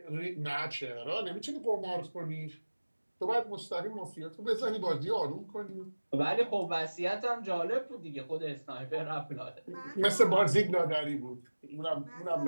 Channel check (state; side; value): inverted; both; correlation -1.00